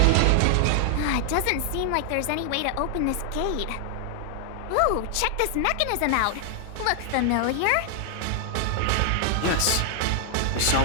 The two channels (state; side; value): different; both; correlation 0.00